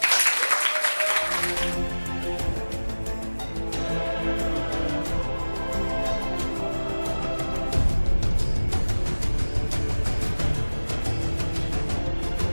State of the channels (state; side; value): inverted; both; correlation -1.00